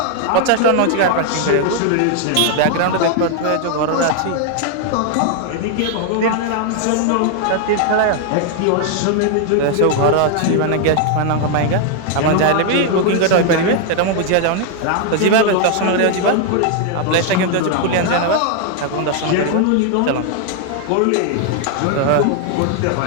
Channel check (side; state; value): both; different; correlation 0.00